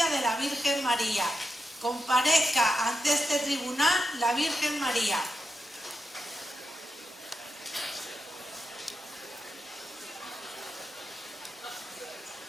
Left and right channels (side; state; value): both; normal; correlation 0.87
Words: de la Virgen María. Comparezca ante este tribunal la Virgen María.